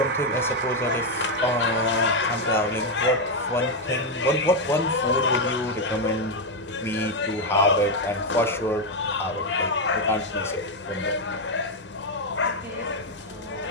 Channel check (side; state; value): both; normal; correlation 0.04